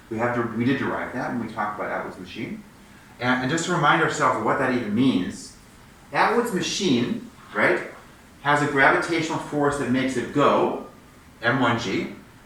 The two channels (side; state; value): both; identical; correlation 1.00